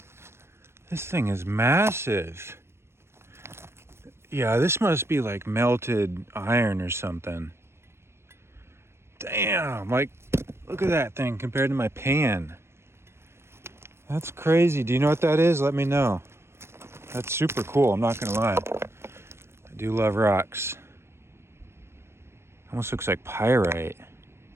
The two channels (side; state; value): left; late; 0.12 ms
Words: This thing is massive. Yeah, this must be like melted iron or something. Damn, like, look at that thing compared to my pan. That's crazy. Do you know what that is? Let me know. That's super cool, I'm not gonna lie. I do love rocks. Almost looks like pyrite.